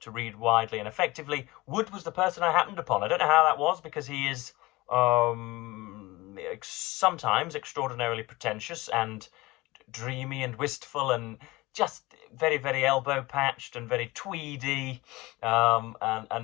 read widely and effectively. Wood was the person I happened upon. I don't know how that was, because he is sometimes extraordinarily pretentious and dreamy and wistful and just very, very elbow patched and very tweedy,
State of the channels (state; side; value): quieter; right; 21.0 dB